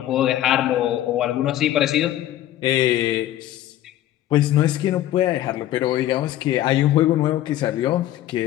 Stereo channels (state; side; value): quieter; right; 13.3 dB